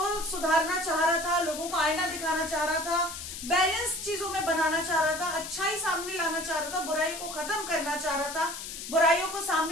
सुधारना चाह रहा था, लोगों को आईना दिखाना चाह रहा था, बैलेंस चीजों में बनाना चाह रहा था, अच्छाई सामने लाना चाह रहा था, बुराई को खत्म करना चाह रहा था, बुराइयों को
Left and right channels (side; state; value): left; noise; hiss, 9 dB below the sound